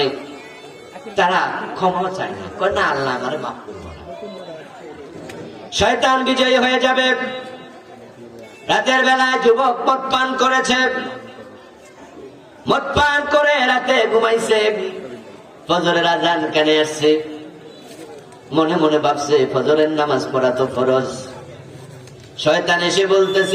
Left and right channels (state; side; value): identical; both; correlation 1.00